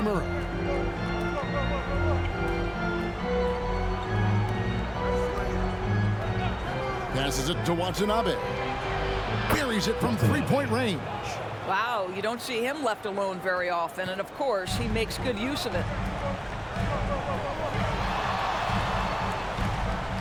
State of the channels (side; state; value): both; identical; correlation 1.00